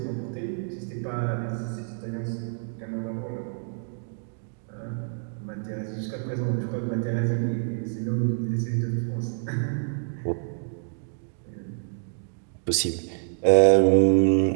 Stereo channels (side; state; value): left; silent; digital silence